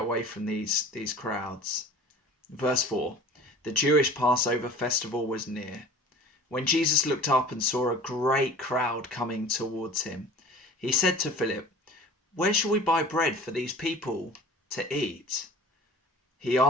away from these crowds. Verse 4. The Jewish Passover festival was near. When Jesus looked up and saw a great crowd coming towards him, he said to Philip, "Where shall we buy bread for these people to eat?" He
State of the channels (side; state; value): both; normal; correlation 0.43